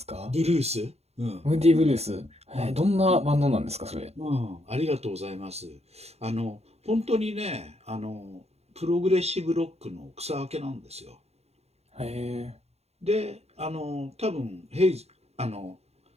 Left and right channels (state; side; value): late; left; 0.30 ms